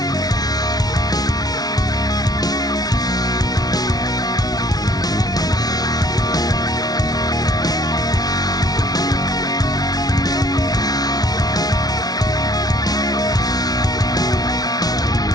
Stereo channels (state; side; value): late; right; 0.19 ms